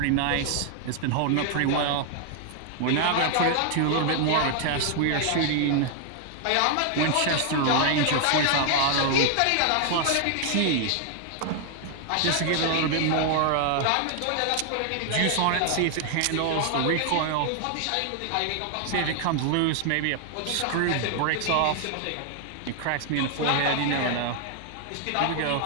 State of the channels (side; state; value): both; different; correlation 0.00